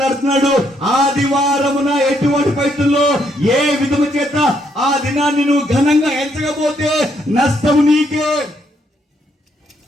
ఆదివారమున ఎటువంటి పరిస్థితుల్లో ఏ విధము చేత ఆ దినాన్ని నువ్వు ఘనంగా ఎంచకపోతే నష్టం నీకే.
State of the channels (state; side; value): normal; both; correlation 0.73